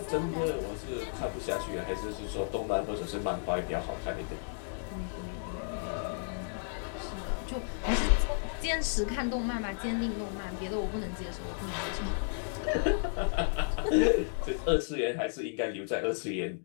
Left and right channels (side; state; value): right; silent; digital silence